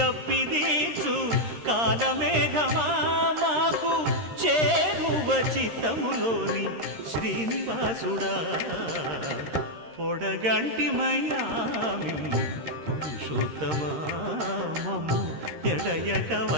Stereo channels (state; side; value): late; left; 13 ms